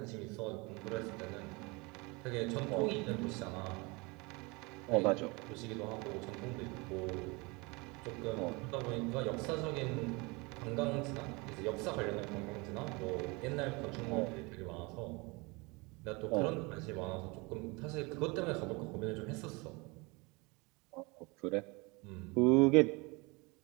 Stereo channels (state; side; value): quieter; left; 26.9 dB